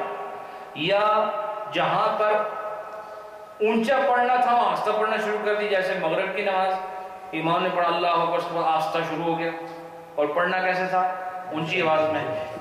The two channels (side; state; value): both; identical; correlation 1.00